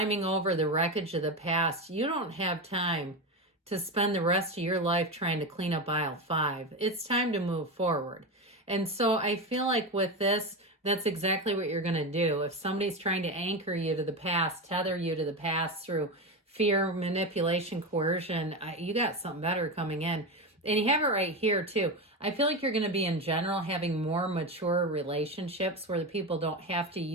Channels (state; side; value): normal; both; correlation 0.18